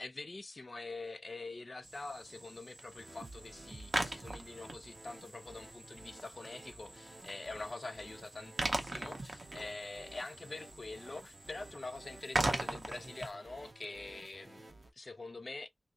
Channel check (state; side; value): normal; both; correlation 0.95